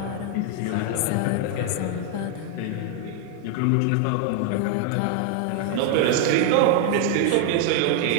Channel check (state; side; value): different; both; correlation 0.00